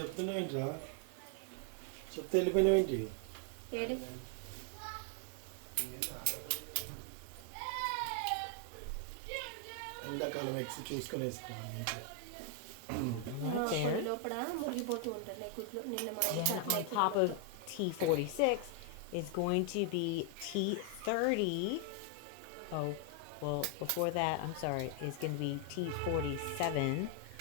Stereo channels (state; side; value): different; both; correlation 0.00